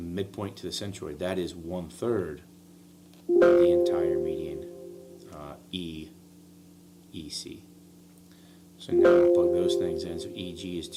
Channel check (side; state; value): both; identical; correlation 1.00